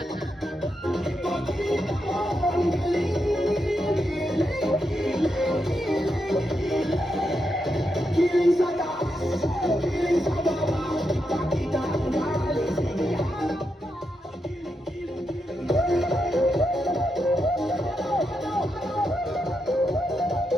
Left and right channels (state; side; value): normal; both; correlation 0.84